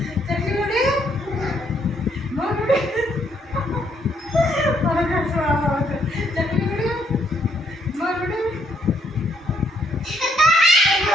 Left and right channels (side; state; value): both; normal; correlation 0.71